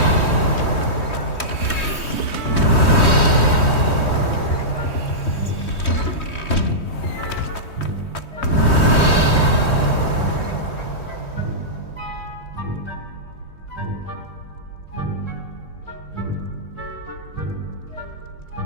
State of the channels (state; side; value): late; right; 3.2 ms